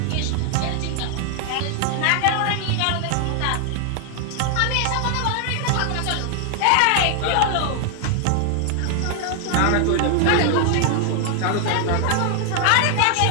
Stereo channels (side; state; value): both; different; correlation 0.00